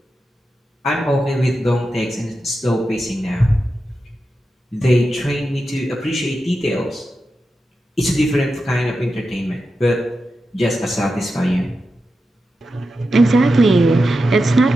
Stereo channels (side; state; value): both; normal; correlation 0.90